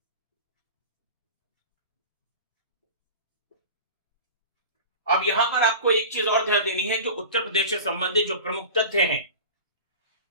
अब यहां पर आपको एक चीज और ध्यान देनी है, जो उत्तर प्रदेश से संबंधित जो प्रमुख तथ्य हैं।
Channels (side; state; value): both; inverted; correlation -0.34